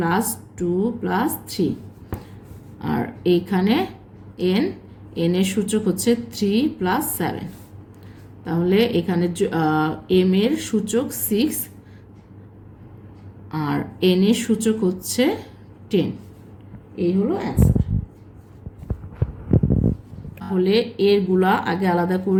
+ 2 + 3, আর এইখানে n এর সূচক হচ্ছে 3 + 7, তাহলে এখানে m এর সূচক 6 আর n এর সূচক হচ্ছে 10। এই হলো অ্যান্সার। তাহলে এরগুলা আগে আলাদা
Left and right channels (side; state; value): both; identical; correlation 1.00